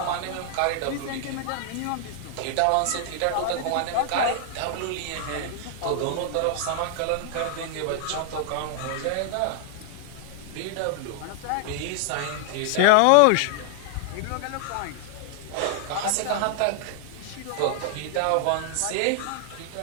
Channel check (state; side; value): different; both; correlation 0.00